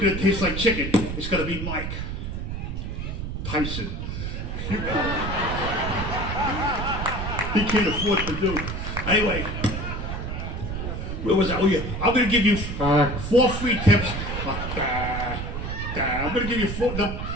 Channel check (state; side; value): noise; right; rumble, 5 dB below the sound